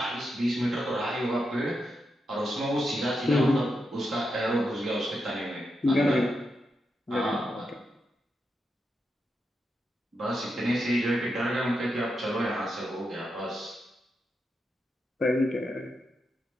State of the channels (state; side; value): normal; both; correlation 0.85